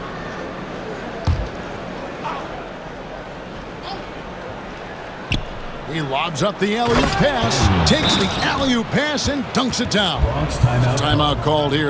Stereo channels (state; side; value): identical; both; correlation 1.00